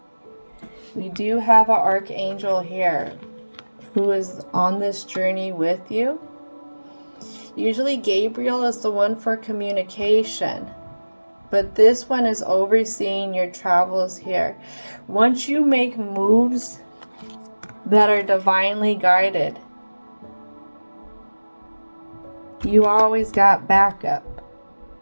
We do have an archangel here who is on this journey with you. Usually Gabriel is the one for communication, but this one is overseeing your travels here. Once you make moves that are divinely guided, you always got backup.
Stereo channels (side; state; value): both; inverted; correlation -1.00